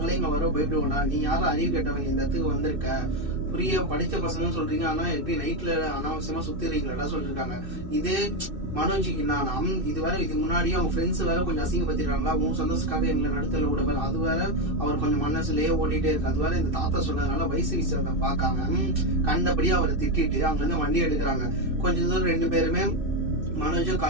இங்க வர பயப்படுவோம்டா, நீ யாரும் அறிவு கேட்டவங்க இந்த இடத்துக்கு வந்திருக்க, புரிய படிச்ச பசங்கன்னு சொல்றீங்க, ஆனா எப்படி நைட்ல அனாவசியமா சுத்திடுறீங்களா சொல்லிருக்காங்க. இதே மனோஜிக்கு நான் இதுக்கு முன்னாடியே அவங்க ஃப்ரெண்ட்ஸ் வேற கொஞ்சம் அசிங்கப்படுத்திடுறாங்களா, உன் சந்தோஷத்துக்காக எங்களை நடத்தல விட வேற, அது வேற அவர் கொஞ்சம் மனசுலயே ஓடிட்டே இருக்கு. அது வேற இந்த தாத்தா சொன்னதுனால வயசு விஷயத்தை பார்க்காம கண்டபடியே அவரை திட்டிட்டு அங்க இருந்து வண்டி எடுக்கிறாங்க. கொஞ்சம் தூரம் 2 பேருமே மனோஜும்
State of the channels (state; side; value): late; left; 2.6 ms